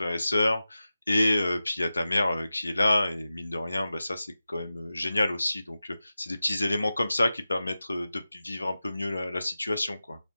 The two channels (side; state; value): both; inverted; correlation -0.94